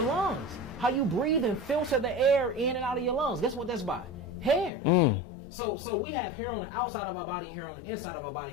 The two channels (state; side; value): drops out; right; at 4.7 s